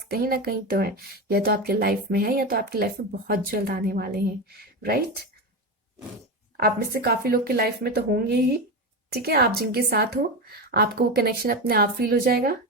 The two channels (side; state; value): both; normal; correlation 0.18